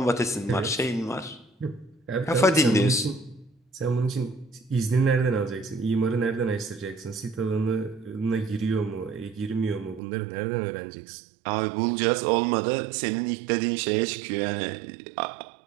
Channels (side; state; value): left; drops out; at 10.0 s